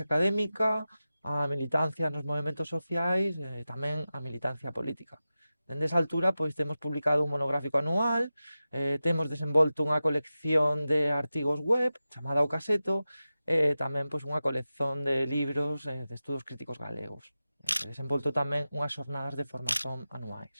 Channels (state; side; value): inverted; both; correlation -0.94